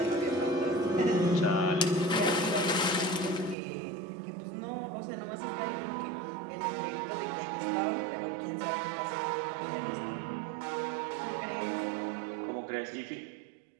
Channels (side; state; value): left; drops out; at 3.6 s